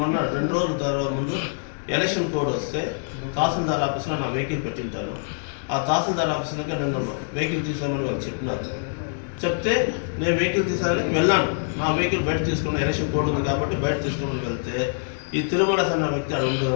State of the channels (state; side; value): silent; right; 62 dB below the other